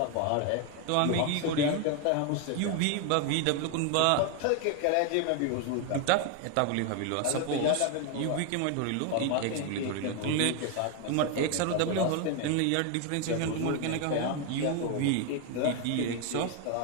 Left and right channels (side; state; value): both; different; correlation 0.01